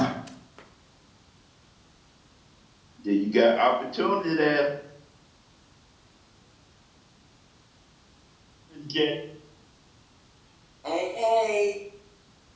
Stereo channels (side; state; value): both; identical; correlation 1.00